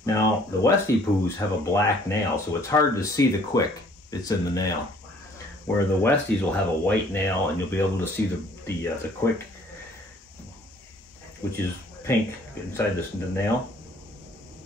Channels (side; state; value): both; normal; correlation 0.58